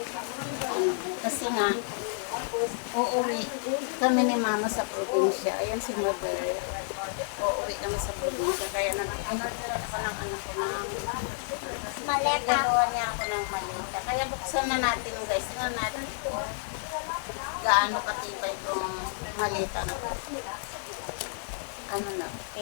kasi nga uuwi kami ni mama sa probinsya. Ayan si mother. Uuwi kami sa probinsya. Kaya nag-order ako ng anak ko ng maleta. Gagawa niya ako ng maleta. Kaya buksan na natin guys. Tingnan natin kung gaano katibay itong maleta na to. Ano na?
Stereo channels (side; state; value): right; silent; 58 dB below the other